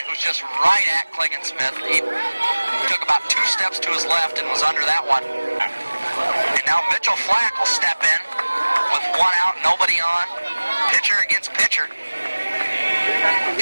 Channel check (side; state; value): both; inverted; correlation -1.00